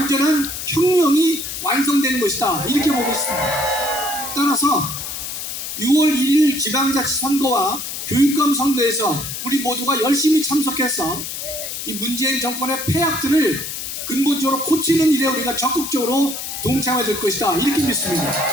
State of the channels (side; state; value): left; noise; hiss, 6 dB below the sound